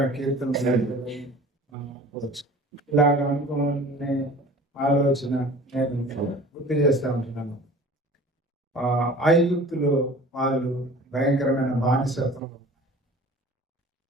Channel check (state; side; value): normal; both; correlation 0.44